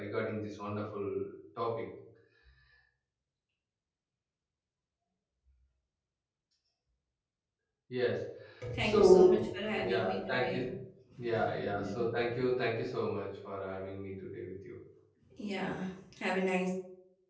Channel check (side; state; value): both; identical; correlation 1.00